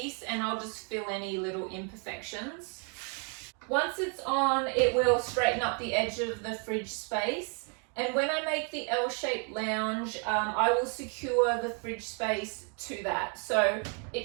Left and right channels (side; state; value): left; quieter; 39.2 dB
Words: and I'll just fill any little imperfections. Once it's on, it will straighten up the edge of the fridge space. And when I make the L-shaped lounge, I will secure the fridge space to that. So